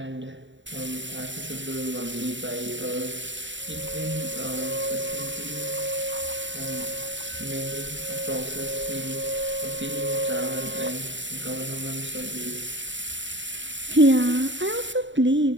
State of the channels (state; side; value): late; left; 0.54 ms